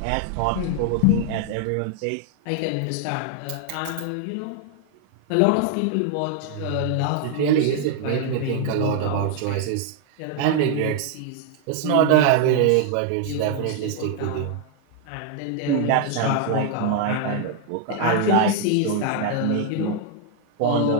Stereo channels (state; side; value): different; both; correlation 0.00